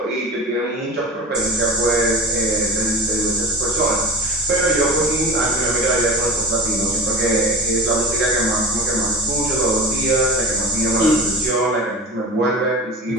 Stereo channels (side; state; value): both; normal; correlation 0.31